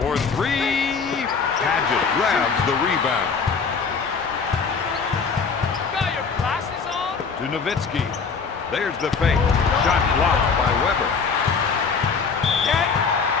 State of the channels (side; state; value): right; quieter; 5.4 dB